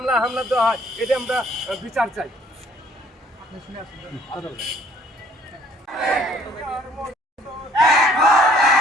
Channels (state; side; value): normal; both; correlation 0.59